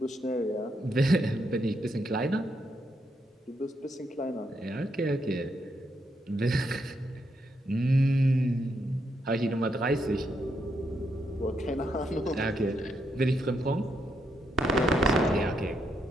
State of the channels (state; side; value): normal; both; correlation 0.79